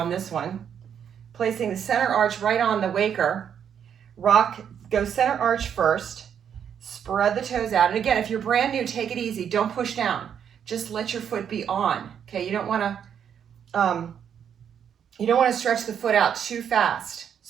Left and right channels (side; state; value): left; quieter; 8.3 dB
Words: this one. Placing the center arch right on the waker. Go center arch first, spread the toes out. And again, if you're brand new, take it easy. Don't push down. Just let your foot be on. Okay, you don't wanna stretch the foot out too fast.